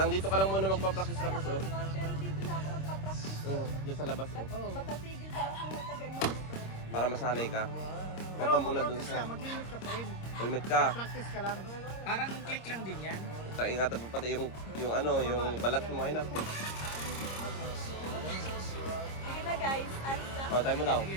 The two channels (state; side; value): late; right; 26 ms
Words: dito ka lang muna magpa-practice Kaya practice ako oh. naman, pero dito na ako magpa-practice. Diyan sa labas oh. Matatigil pa ako matagal mag-motor. Para masanay ka. Huwag ka muna dun sa... Mag-limit ka pa rin. Helmet ka. Practice ka lang. Parang click lang din yan. Sa ingatan mo pati yung ano, yung balat mo ay naku. Sige na guys, alis na. Oh, tayo mo daw.